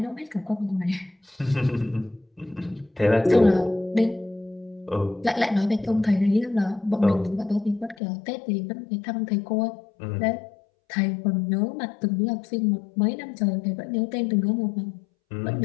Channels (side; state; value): right; drops out; at 8.0 s